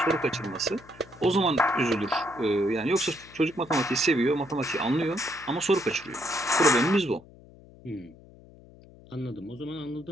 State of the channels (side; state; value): left; noise; hum, 23 dB below the sound